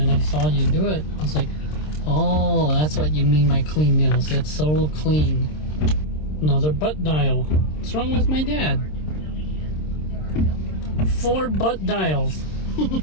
I saw you do it. I was like, oh, that's what you mean by clean nails. It's so clean. Another butt dial. What's wrong with my dad? 4 butt dials.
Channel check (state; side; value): late; right; 26 ms